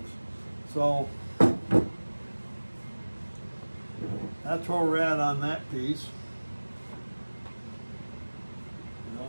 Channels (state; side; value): inverted; both; correlation -1.00